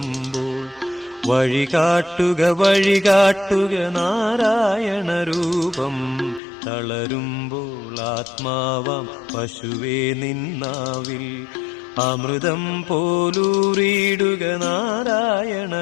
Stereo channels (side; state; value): right; drops out; at 6.4 s